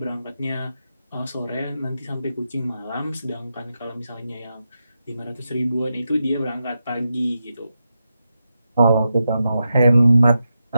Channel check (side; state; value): both; inverted; correlation -0.88